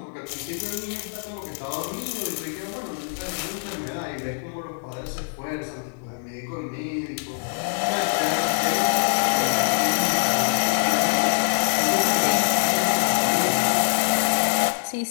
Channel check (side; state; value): right; silent; digital silence